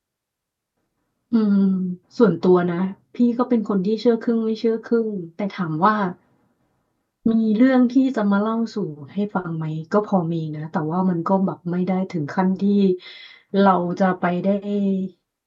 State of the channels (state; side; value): identical; both; correlation 1.00